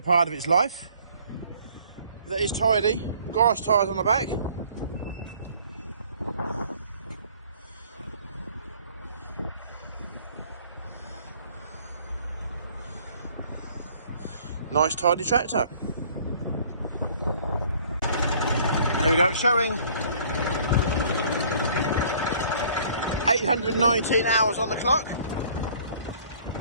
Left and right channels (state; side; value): inverted; both; correlation -0.56